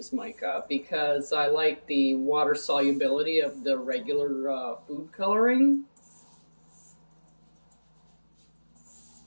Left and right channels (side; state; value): both; inverted; correlation -1.00